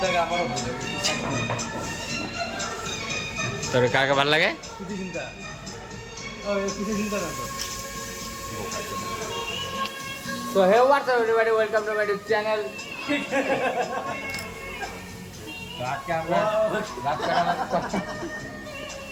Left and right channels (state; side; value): identical; both; correlation 1.00